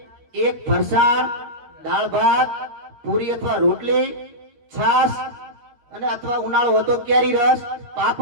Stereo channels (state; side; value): late; left; 12 ms